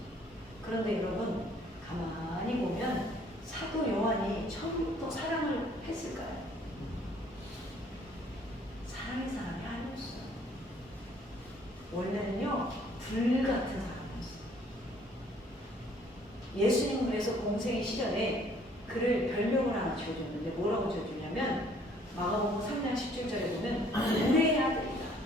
그런데 여러분 가만히 보면 사도 요한이 처음부터 사랑을 했을까요? 사랑의 사람이 아니었어요. 원래는요 불같은 사람이었어요. 예수님 그래서 공생의 시절에 그를 별명을 하나 지어줬는데 뭐라고 지어주냐면 마가복음 3장 17절에 보면 우레의 아들이다.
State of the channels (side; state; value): both; normal; correlation 0.60